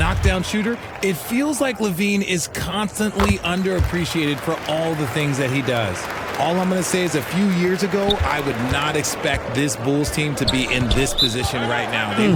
shooter, it feels like Levine is constantly underappreciated for all the things that he does. All I'm going to say is a few years ago, I would not expect this Bulls team to be in this position right now. They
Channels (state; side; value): identical; both; correlation 1.00